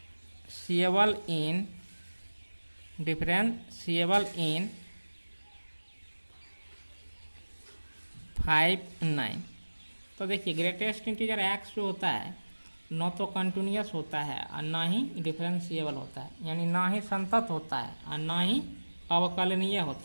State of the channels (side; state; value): both; inverted; correlation -1.00